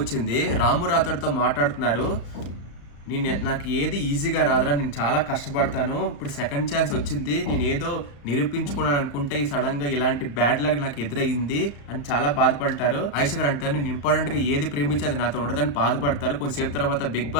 వచ్చింది. రాము రాథోడ్తో మాట్లాడుతున్నారు. నాకు ఏది ఈజీగా రాదురా, నేను చాలా కష్టపడతాను, ఇప్పుడు సెకండ్ ఛాన్స్ వచ్చింది, నేను ఏదో నిరూపించుకున్నాను అనుకుంటే ఈ సడన్ గా ఇలాంటి బ్యాడ్ లక్ నాకు ఎదురయ్యింది అని చాలా బాధపడతారు. ఆయిషా గారు అంటారు, నేను ఇంపార్టెంట్ గా ఏది ప్రేమించి అది నాతో ఉండదని బాధపడతారు. కొంతసేపు తర్వాత బిగ్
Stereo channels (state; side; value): late; right; 35 ms